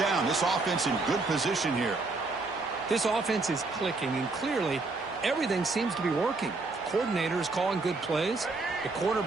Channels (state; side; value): quieter; left; 3.6 dB